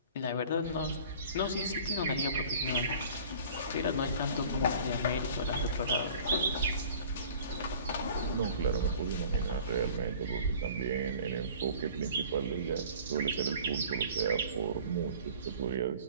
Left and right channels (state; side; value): inverted; both; correlation -0.46